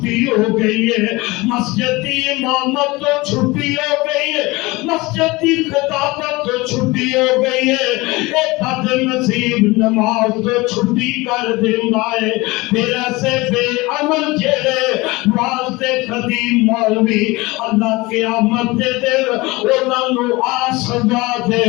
ہو گئی ہے، مسجد کی امامت تو چھٹی ہو گئی ہے، مسجد کی خطابت تو چھٹی ہو گئی ہے، ایک بد نصیب نماز تو چھٹی کر دینا ہے. پھر ایسے بے عمل جڑے واسطے خطیب مولوی اللہ قیامت دے دل انہاں نو آ سزا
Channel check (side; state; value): right; quieter; 22.3 dB